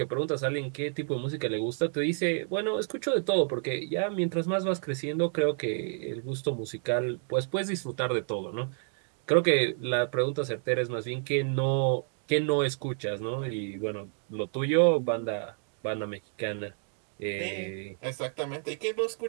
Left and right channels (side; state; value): left; silent; 58 dB below the other